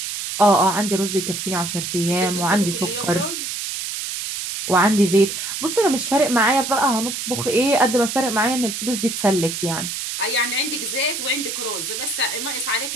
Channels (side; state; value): right; noise; hiss, 5 dB below the sound